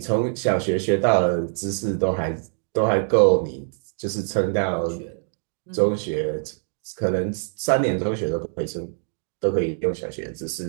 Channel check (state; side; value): silent; left; digital silence